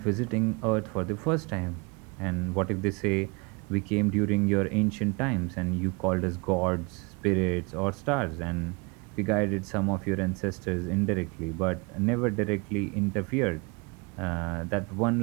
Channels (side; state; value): left; quieter; 29.3 dB